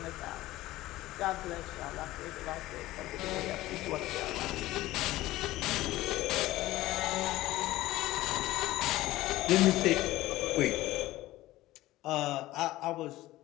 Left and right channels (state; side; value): quieter; right; 16.8 dB